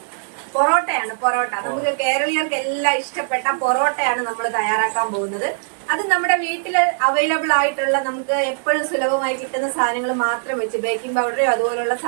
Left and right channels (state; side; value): silent; left; digital silence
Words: പൊറോട്ടയാണ്. പൊറോട്ട നമുക്ക് കേരളീയർക്ക് എല്ലാം ഇഷ്ടപ്പെട്ട പൊറോട്ടയാണ് നമ്മൾ തയ്യാറാക്കാൻ പോകുന്നത്. അത് നമ്മുടെ വീട്ടിൽ അവൈലബിൾ ആയിട്ടുള്ള നമുക്ക് എപ്പോഴും സുലഭമായി കിട്ടുന്ന സാധനങ്ങൾ മാത്രം വെച്ച്, ബേക്കിംഗ് പൗഡറോ അതുപോലുള്ള